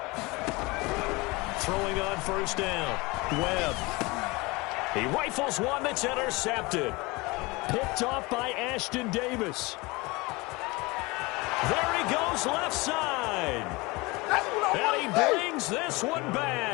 Throwing on 1st down, Webb. He rifles one that's intercepted. Picked off by Ashton Davis. There he goes, left side. And he brings this one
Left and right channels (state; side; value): quieter; right; 24.1 dB